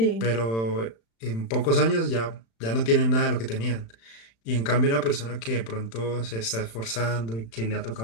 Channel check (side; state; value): right; late; 35 ms